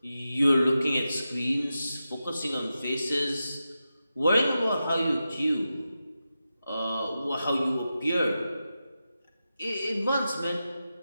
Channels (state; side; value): inverted; both; correlation -0.91